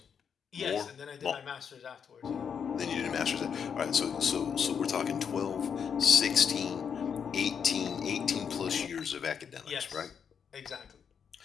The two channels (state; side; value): quieter; right; 7.1 dB